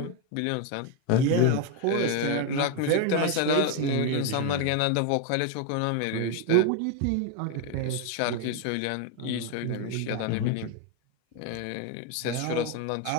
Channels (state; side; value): different; both; correlation 0.01